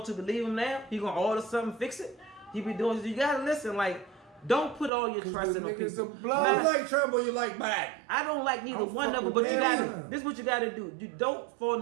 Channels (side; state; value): left; drops out; at 4.9 s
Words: to believe him now? He gonna order something, fix it? He be doing. You gotta listen. Like, don't put all your 'Cause trust the in the niggas people. are blood. Nah, You like Trump or you like Biden? I don't like neither I'm one of them, fucking but you with gotta. them. This is what you gotta do. You don't